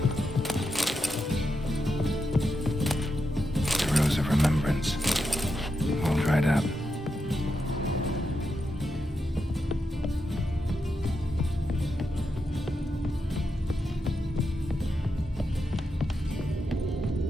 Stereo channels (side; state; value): both; normal; correlation 0.85